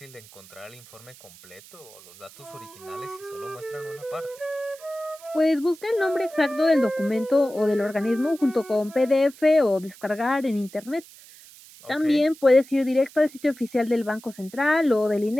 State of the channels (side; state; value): right; noise; hiss, 21 dB below the sound